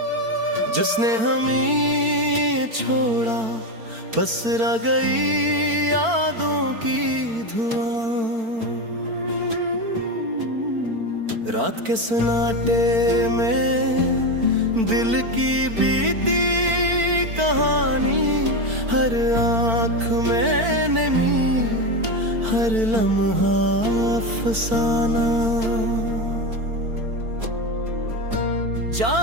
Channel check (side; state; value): left; late; 4.5 ms